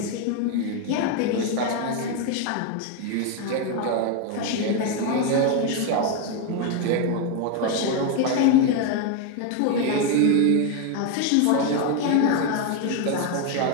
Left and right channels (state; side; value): different; both; correlation 0.01